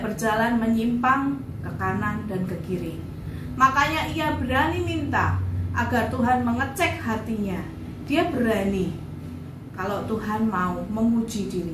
berjalan menyimpang ke kanan dan ke kiri. Makanya ia berani minta agar Tuhan mengecek hatinya. Dia berani kalau Tuhan mau menguji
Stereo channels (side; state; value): both; identical; correlation 1.00